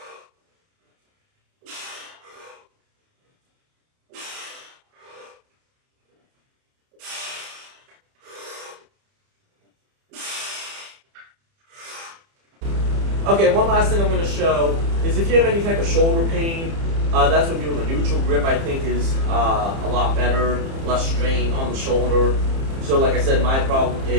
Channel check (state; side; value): late; left; 30 ms